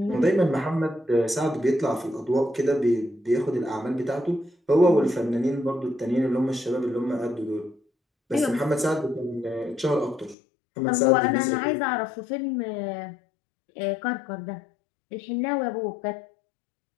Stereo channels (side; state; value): right; drops out; at 10.4 s